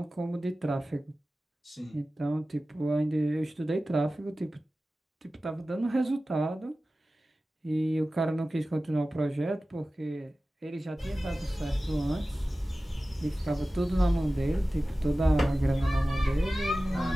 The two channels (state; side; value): normal; both; correlation 0.96